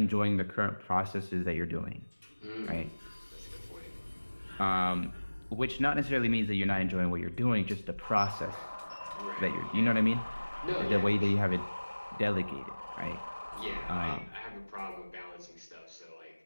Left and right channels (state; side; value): inverted; both; correlation -1.00